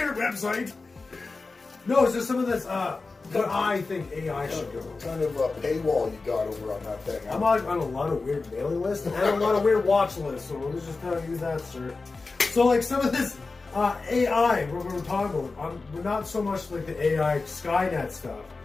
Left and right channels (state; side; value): quieter; right; 3.9 dB